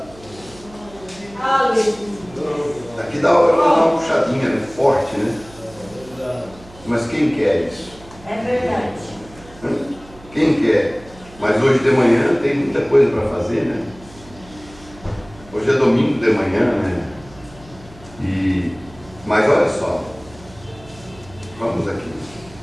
Aleluia. Aqui dá uma puxadinha, né? Forte, né? Mas quem quer isso? É verdade. Quem quer? Mas hoje de manhã tem muita coisa para fazer, né? Hoje é domingo de manhã, né? Mas olha só, vamos aqui.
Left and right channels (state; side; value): noise; right; hum, 22 dB below the sound